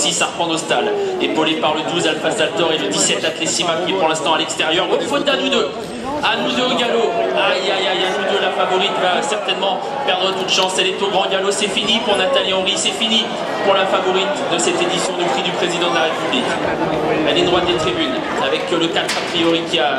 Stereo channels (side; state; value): both; identical; correlation 1.00